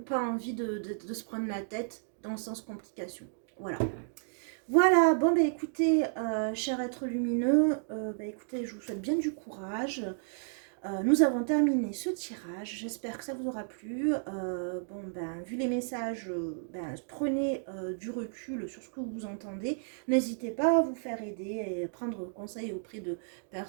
envie de se prendre la tête dans le sens complication. Voilà. Voilà, bon écoutez, cher être lumineux, écoutez, je vous souhaite bien du courage. Nous avons terminé ce tirage, j'espère que ça vous aura plu. Vu les messages, prenez du recul sur ce que vous entendez. N'hésitez pas à vous faire aider et prendre conseil auprès de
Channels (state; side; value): silent; left; digital silence